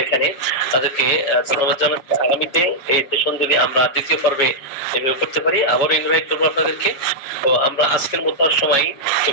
এখানে তাদেরকে ধন্যবাদ জানাচ্ছি। আগামীতে এই সেশন যদি আমরা দ্বিতীয় পর্বে এভাবে করতে পারি আবারও ইনভাইট করবো আপনাদেরকে। তো আমরা আজকের মতো আর সময়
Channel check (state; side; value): late; right; 7.3 ms